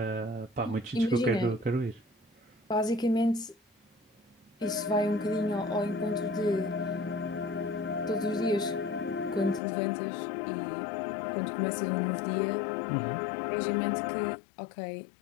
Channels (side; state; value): right; drops out; at 9.6 s